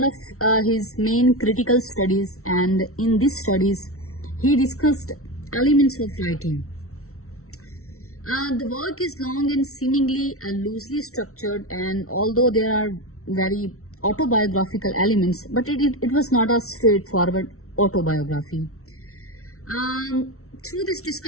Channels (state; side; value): late; right; 0.63 ms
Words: of his main critical studies, and in these studies, he discussed elements of writing. The work is long and seemingly loosely structured, and although there are very autobiographical elements, but it was not a straightforward autobiography. Through this